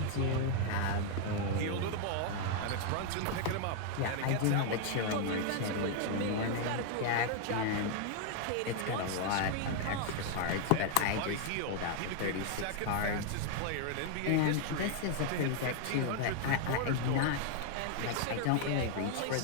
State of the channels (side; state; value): both; different; correlation 0.00